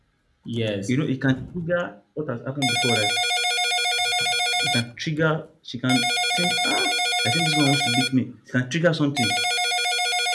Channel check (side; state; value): both; identical; correlation 1.00